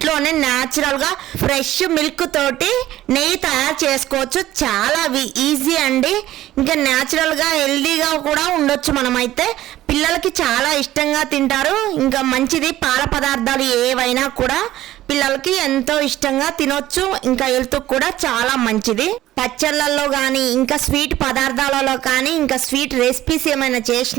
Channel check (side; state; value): left; quieter; 14.4 dB